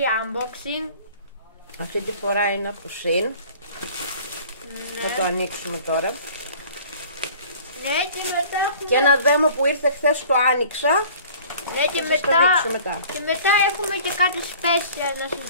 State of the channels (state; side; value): inverted; both; correlation -0.48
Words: unboxing. Αυτή τη φορά είναι από Shein. Ναι. Θα το ανοίξουμε τώρα. Ναι, και μετά έχουμε... Και ένα δέμο που ήρθε χθες το άνοιξα. Ναι, και Θα σας το μετά... δείξω μετά. Και μετά έχουμε και κάτι special να σας